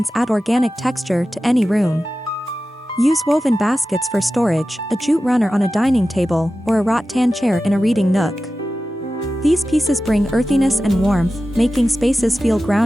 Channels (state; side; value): normal; both; correlation 0.94